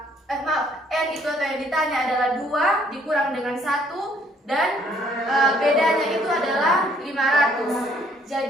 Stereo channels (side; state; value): both; normal; correlation 0.64